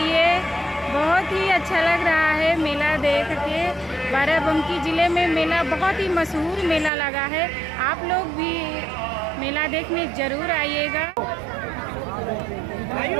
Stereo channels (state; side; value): drops out; left; at 6.9 s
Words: बहुत ही अच्छा लग रहा है मेला देख के। बाराबंकी ज़िले में मेला बहुत ही मशहूर मेला लगा है। आप लोग भी मेला देखने ज़रूर आइएगा।